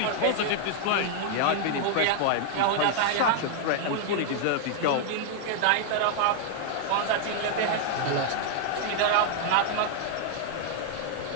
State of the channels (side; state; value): both; different; correlation 0.00